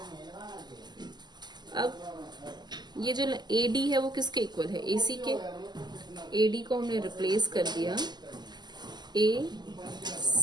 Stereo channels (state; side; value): late; left; 0.21 ms